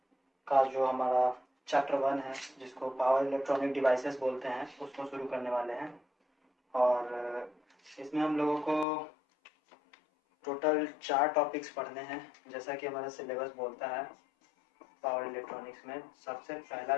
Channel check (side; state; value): right; drops out; at 8.8 s